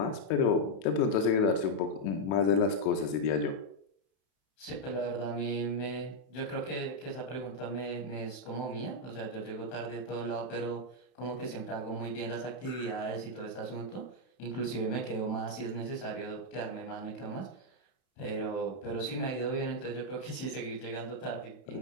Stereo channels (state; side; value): late; right; 31 ms